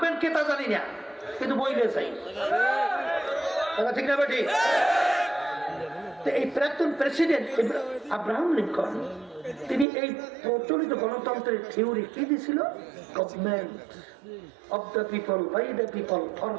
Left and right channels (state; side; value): drops out; left; at 9.9 s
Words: কে তা জানি না, কিন্তু বইলে চাই, ঠিক না বেটি? এই প্রাক্তন প্রেসিডেন্ট আব্রাহাম লিঙ্কন, তিনি এই প্রচলিত গণতন্ত্রের থিওরি কি দিয়েছিল? Government of the people, by the people, for